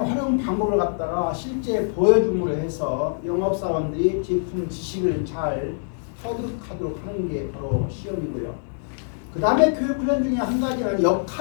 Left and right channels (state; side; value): silent; right; digital silence